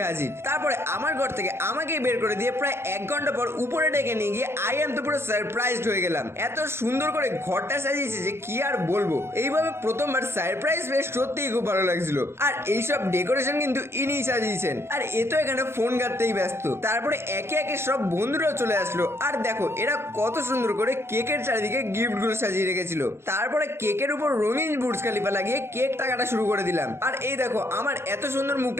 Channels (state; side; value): late; left; 0.12 ms